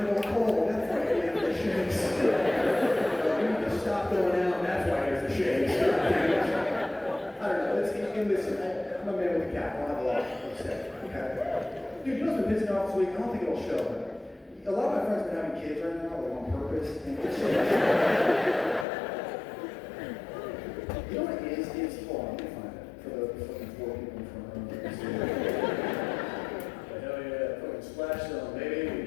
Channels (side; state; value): right; drops out; at 18.9 s